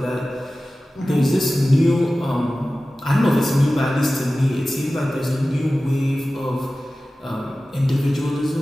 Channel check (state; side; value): normal; both; correlation 0.96